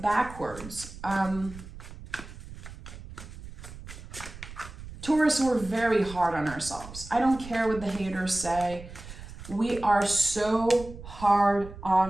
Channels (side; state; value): right; noise; rumble, 14 dB below the sound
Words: Taurus, we're very hard on ourselves. I don't care what the haters say. We are so hard